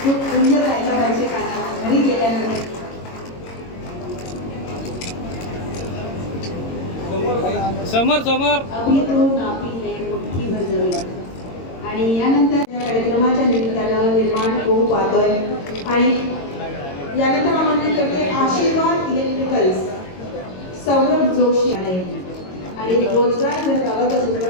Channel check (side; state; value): right; late; 22 ms